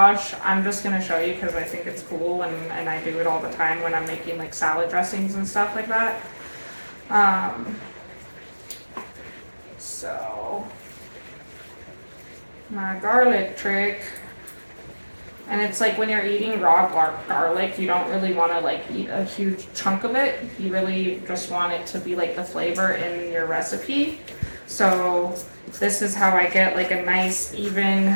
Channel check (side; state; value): both; inverted; correlation -1.00